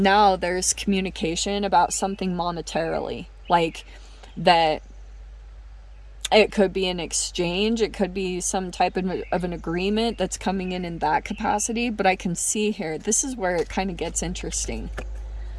there's communication about something monetarily, like that. It could be an exchange, it could be some type of an agreement that's coming in that capacity. But I can see here, this is where it kind of gets interesting,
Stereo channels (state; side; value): identical; both; correlation 1.00